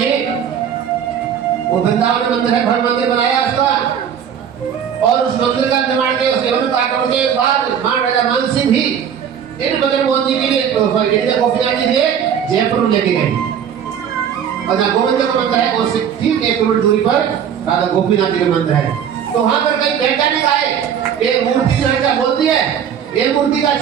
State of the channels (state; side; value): quieter; left; 8.4 dB